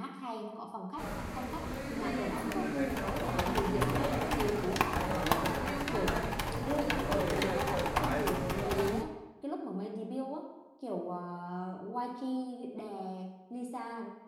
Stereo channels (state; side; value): identical; both; correlation 1.00